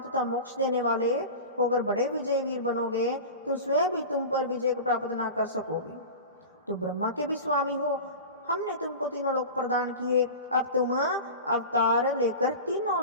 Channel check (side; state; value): both; inverted; correlation -0.31